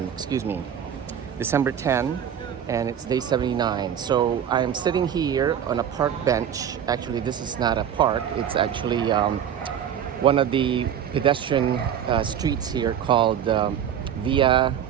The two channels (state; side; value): quieter; left; 9.2 dB